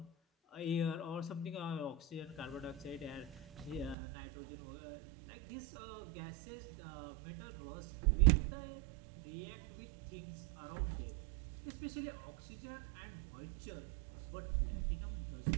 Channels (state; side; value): drops out; left; at 4.0 s